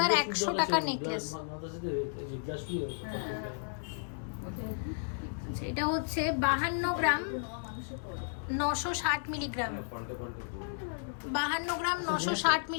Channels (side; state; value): right; silent; digital silence